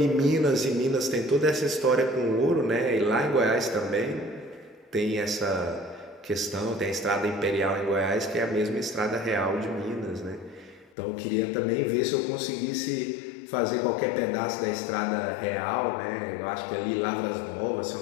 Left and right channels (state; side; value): drops out; right; at 11.0 s